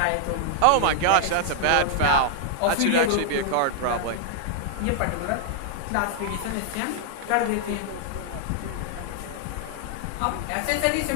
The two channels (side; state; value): both; different; correlation 0.00